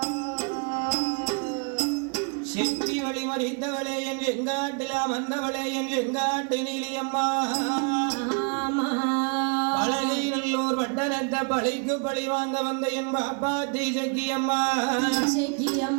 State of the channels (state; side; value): quieter; left; 38.4 dB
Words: செட்டி வழி மறித்தவளே என் எங்காட்டிலாம் வந்தவளே என் எங்காட்டு நீலியம்மா பழகை நல்லூர் பட்டணத்தை பழிக்கு பழி வாங்க வந்த என் பாப்பாத்தி செக்கியம்மா